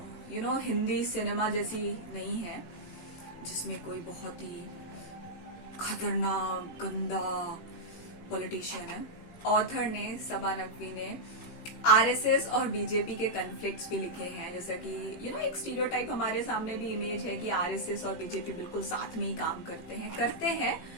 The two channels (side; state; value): right; late; 18 ms